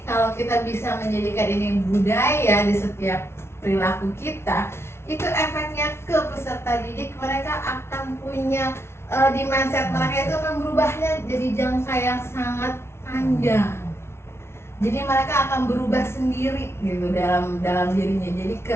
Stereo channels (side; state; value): right; late; 0.12 ms